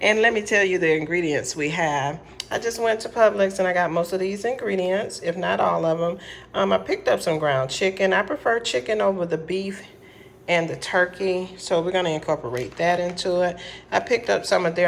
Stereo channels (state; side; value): identical; both; correlation 1.00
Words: let me tell you the ingredients we have. I just went to Publix and I got most of these ingredients, if not all of them. I picked up some ground chicken. I prefer chicken over the beef and the turkey, so we're gonna incorporate that into it. I picked up some of